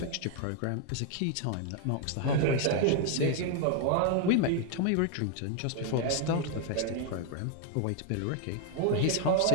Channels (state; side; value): different; both; correlation 0.00